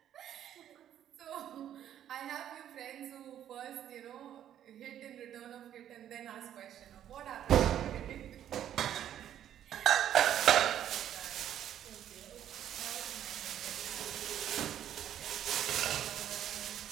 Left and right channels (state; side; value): quieter; left; 10.7 dB